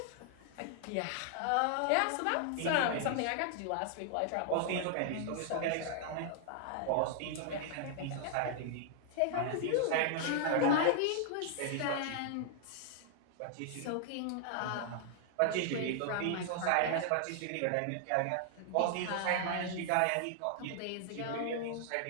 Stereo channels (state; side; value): different; both; correlation 0.00